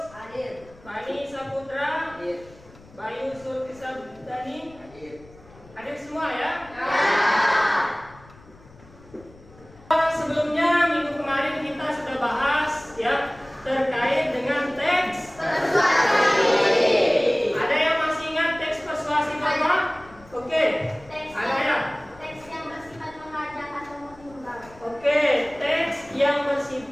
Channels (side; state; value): left; noise; rumble, 23 dB below the sound